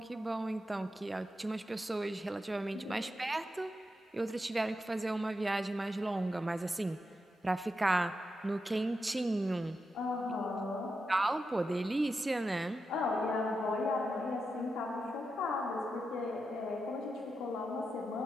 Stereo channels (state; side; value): normal; both; correlation 0.87